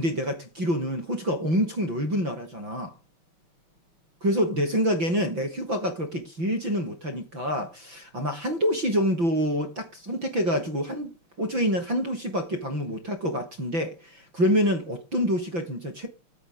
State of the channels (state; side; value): late; left; 5.9 ms